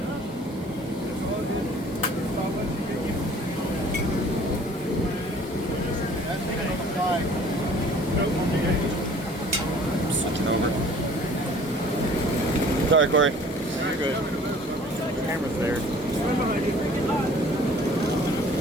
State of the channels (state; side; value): normal; both; correlation 0.51